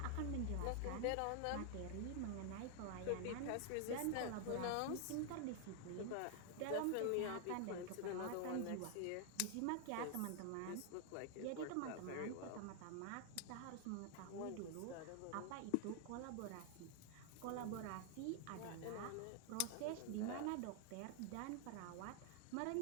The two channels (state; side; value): different; both; correlation 0.00